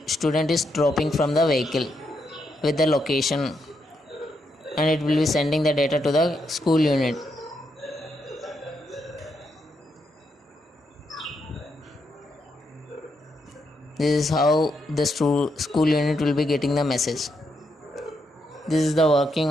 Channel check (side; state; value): both; normal; correlation 0.80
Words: student is dropping from the vehicle with the location, and it will be sending the data to the school unit. This is how the school unit will be getting the message. This is the working